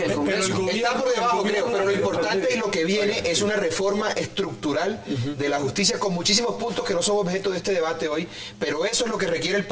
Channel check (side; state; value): both; identical; correlation 1.00